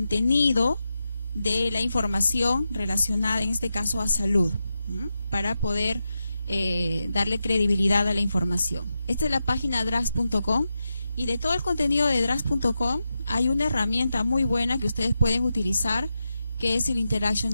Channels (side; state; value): both; inverted; correlation -0.88